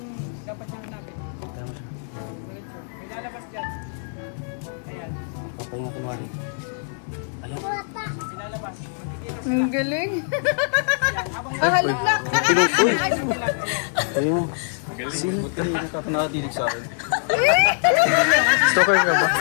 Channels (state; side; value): silent; right; digital silence